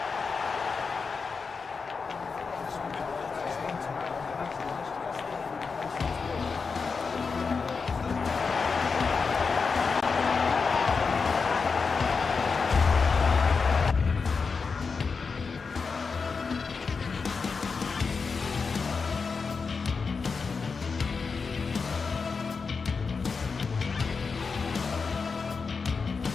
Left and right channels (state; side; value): quieter; right; 5.0 dB